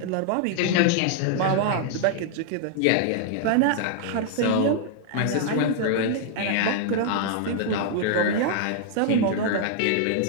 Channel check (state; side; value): different; both; correlation -0.01